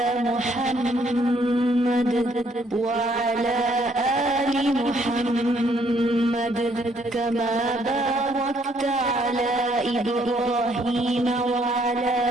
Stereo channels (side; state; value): both; normal; correlation 0.67